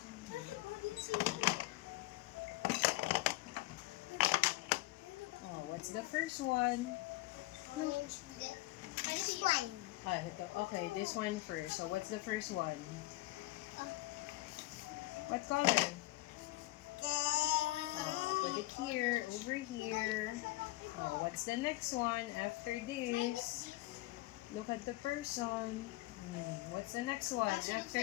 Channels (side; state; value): right; quieter; 18.9 dB